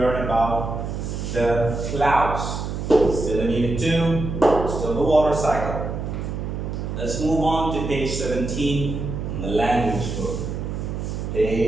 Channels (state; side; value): noise; right; hum, 4 dB below the sound